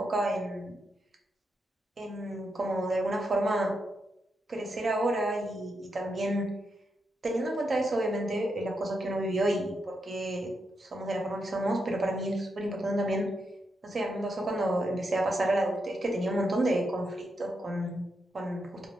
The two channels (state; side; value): normal; both; correlation 0.83